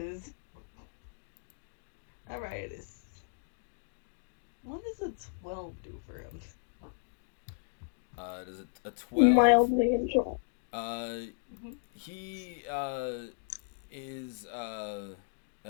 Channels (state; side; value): silent; right; digital silence